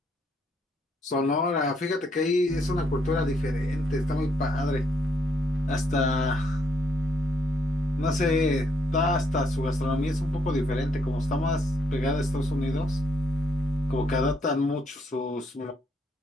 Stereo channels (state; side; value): normal; both; correlation 0.72